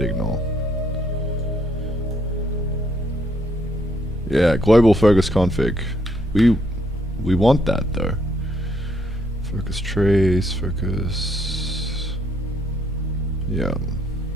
ignore. Yeah, global Focus config. We want that though. Focus trace, focus. Yeah.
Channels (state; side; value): noise; left; rumble, 19 dB below the sound